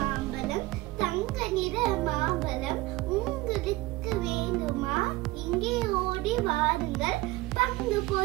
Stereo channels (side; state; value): left; quieter; 19.5 dB